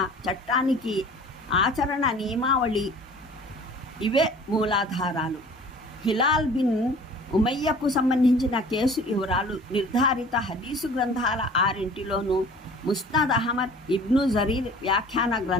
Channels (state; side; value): normal; both; correlation 0.47